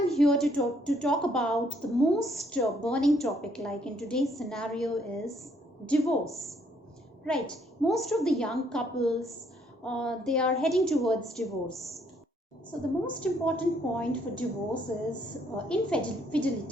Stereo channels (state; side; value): normal; both; correlation 0.68